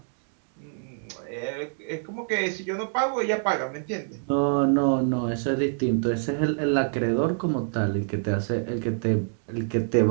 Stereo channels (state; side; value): silent; left; digital silence